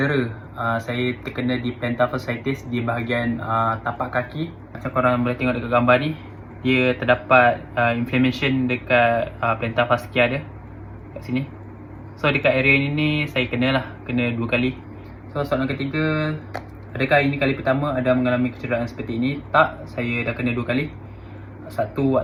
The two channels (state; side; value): identical; both; correlation 1.00